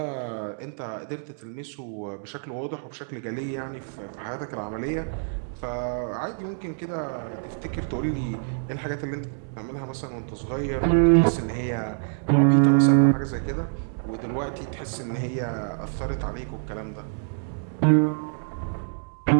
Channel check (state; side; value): silent; left; digital silence